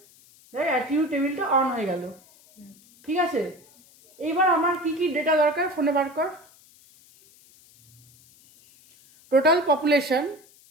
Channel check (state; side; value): noise; left; hiss, 27 dB below the sound